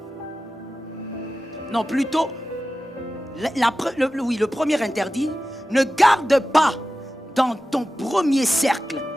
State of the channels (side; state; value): both; normal; correlation 0.94